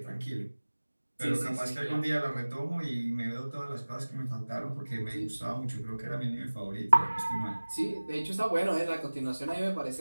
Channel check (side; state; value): both; inverted; correlation -1.00